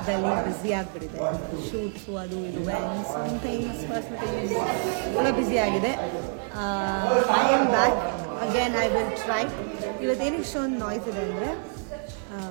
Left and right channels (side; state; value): left; silent; 55 dB below the other